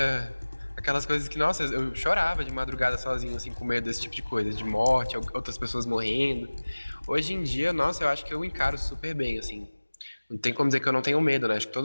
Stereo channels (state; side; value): inverted; both; correlation -1.00